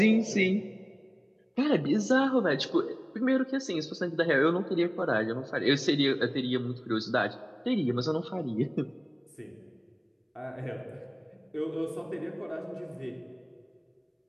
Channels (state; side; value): identical; both; correlation 1.00